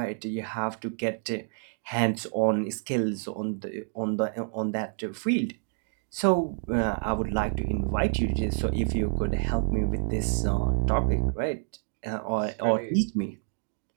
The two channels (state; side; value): silent; left; 58 dB below the other